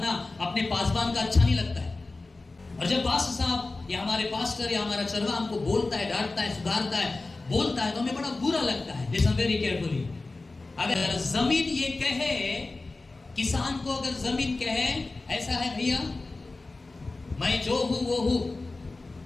अपने पासवान का अच्छा नहीं लगता है। और जब पास्टर साहब या हमारे पास्टर या हमारा चरवा हमको बोलता है, डांटता है, सुधारता है, बोलता है, तो हमें बड़ा बुरा लगता है। Listen very carefully. अगर जमीन ये कहे, किसान को अगर जमीन कहे ऐसा है, भैया मैं जो हूं वो हूं,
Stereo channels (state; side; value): quieter; right; 3.4 dB